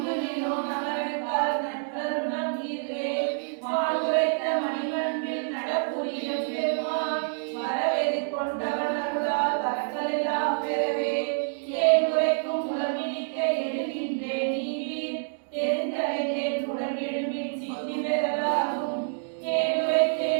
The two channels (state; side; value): silent; left; digital silence